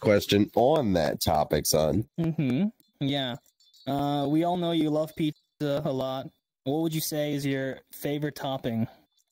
on that topic, son. Yeah. We all know you love pizza a lot. What would you say is your favorite topping?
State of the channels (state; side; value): identical; both; correlation 1.00